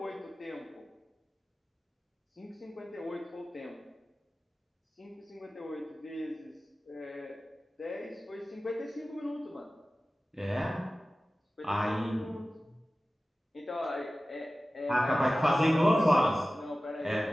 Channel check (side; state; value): both; normal; correlation 0.96